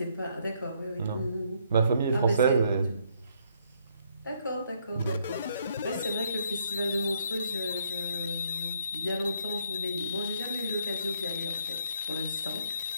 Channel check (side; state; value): both; inverted; correlation -0.70